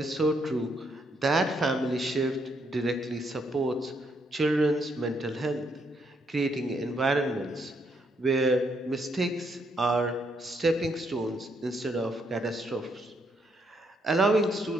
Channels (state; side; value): normal; both; correlation 0.74